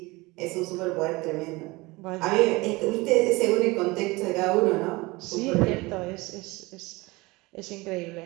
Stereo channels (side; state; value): left; quieter; 22.8 dB